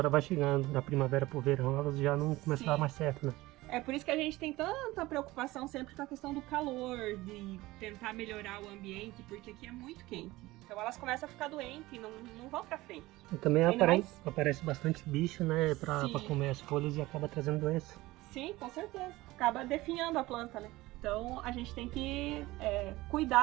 vai chegando, da primavera para o verão, elas já não começam a dar mais certo, né? É por isso que a gente tem tanta preocupação sempre com a questão do calor, de tentar melhorar o ambiente, porque aqui é muito quente. Então elas começam a ficar doentes e não vão pra frente. E também aparece bastante bicho, né, pra comer as folhas e acaba trazendo doença. Sim, com certeza. Acaba definhando a planta, né? Então a gente tem que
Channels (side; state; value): left; quieter; 19.0 dB